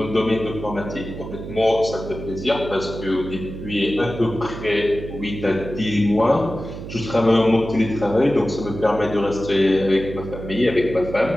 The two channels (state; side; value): noise; right; hum, 10 dB below the sound